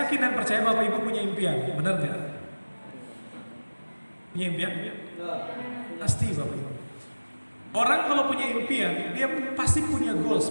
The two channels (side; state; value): both; inverted; correlation -1.00